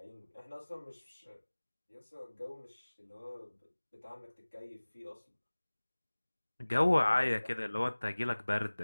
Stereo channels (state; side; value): inverted; both; correlation -1.00